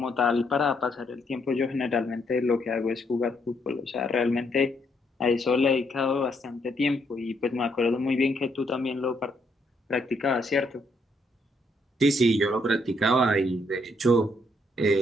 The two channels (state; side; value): normal; both; correlation 0.73